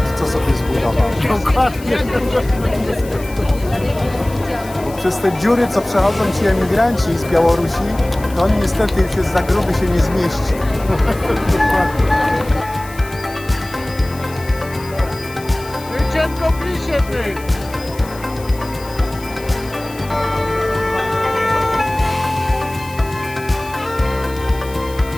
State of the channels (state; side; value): noise; left; hiss, 19 dB below the sound